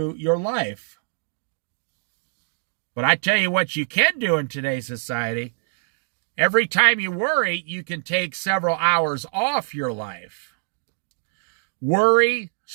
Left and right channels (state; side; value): silent; left; digital silence